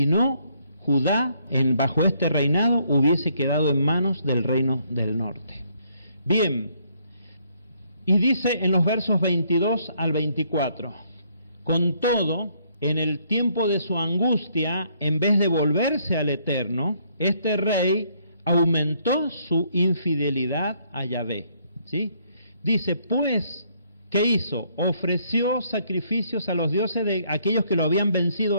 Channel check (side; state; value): both; inverted; correlation -0.69